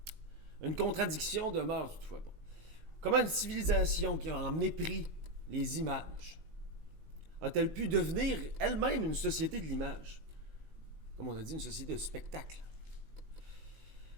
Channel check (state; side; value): late; left; 19 ms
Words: Une contradiction demeure toutefois. Comment une civilisation qui a en mépris les images a-t-elle pu devenir elle-même une société de l'image? Comme on a dit, une société de spectacle.